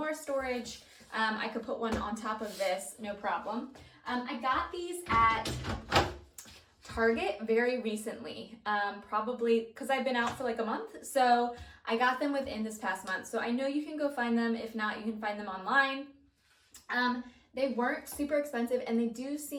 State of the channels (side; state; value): both; identical; correlation 1.00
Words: storage, I could put one on top of this, no problem. I got these at Target very recently, probably because I've been out for like a month. So I got them within this past month. So I know you can go find them. If not, you can find them online. They weren't super expensive, and they do